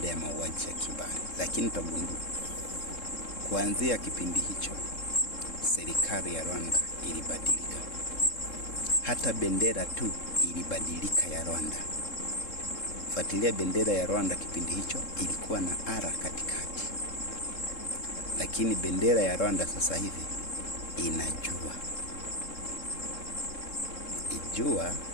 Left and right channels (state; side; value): late; right; 3.7 ms